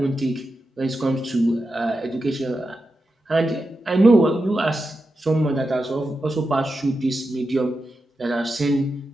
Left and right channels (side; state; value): both; normal; correlation 0.89